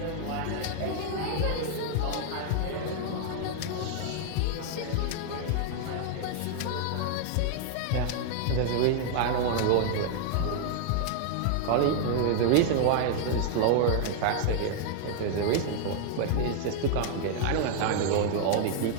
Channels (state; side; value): different; both; correlation 0.00